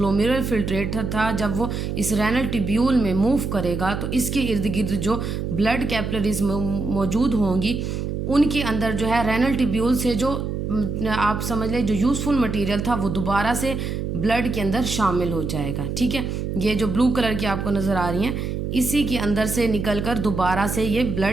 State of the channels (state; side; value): noise; right; hum, 3 dB below the sound